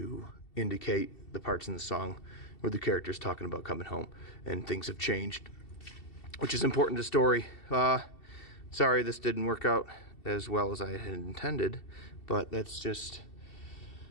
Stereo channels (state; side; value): late; right; 2.7 ms